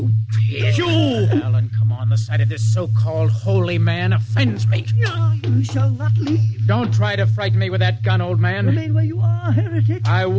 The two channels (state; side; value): identical; both; correlation 1.00